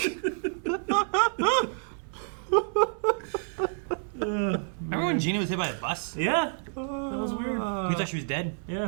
Remember when Gina was hit by a bus? Yeah. That was weird. You thought she was dead?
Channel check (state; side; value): silent; left; 59 dB below the other